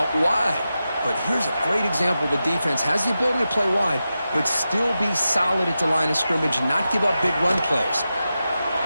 wide. But here's a great example. The defense has the ability to play wide, but still be solid at the line of scrimmage and not give up big run plays.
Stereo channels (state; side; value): inverted; both; correlation -0.91